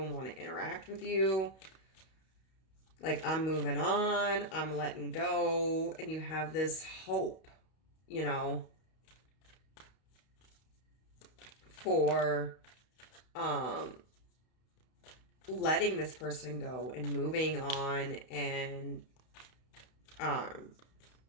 want to interact with you. Like, I'm moving on, I'm letting go, and you have this hope, you know, for letting this person go and moving on and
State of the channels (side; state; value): right; late; 32 ms